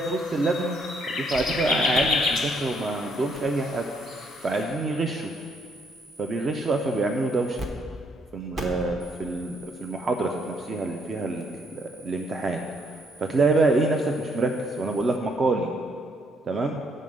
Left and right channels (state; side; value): normal; both; correlation 0.71